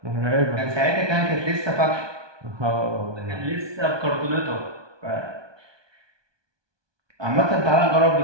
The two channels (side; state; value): left; late; 1.2 ms